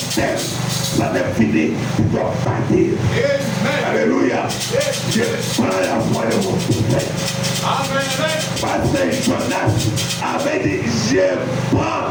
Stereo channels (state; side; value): identical; both; correlation 1.00